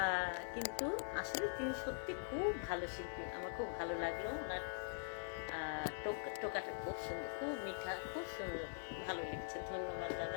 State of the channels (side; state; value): right; silent; digital silence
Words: কিন্তু আসলে তিনি সত্যি খুব ভালো শিল্পী, আমার খুব ভালো লাগলো। ওনার টোকাটা খুব সুন্দর, খুব মিঠা, খুব সুন্দর, ভালো লেগেছে। ধন্যবাদ